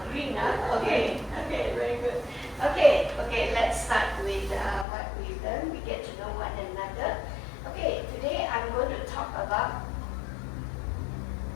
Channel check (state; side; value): drops out; right; at 4.9 s